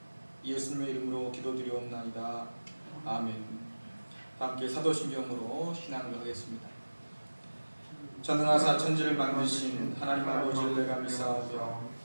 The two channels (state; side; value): inverted; both; correlation -1.00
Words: 예수님의 이름으로 기도드리옵나이다. 아멘. 함께 사도신경으로 신앙을 하겠습니다. 전능하사 천지를 만드신 하나님 아버지를 내가 믿사오며